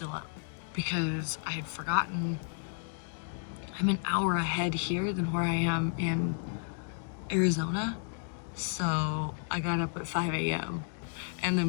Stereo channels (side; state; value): right; silent; digital silence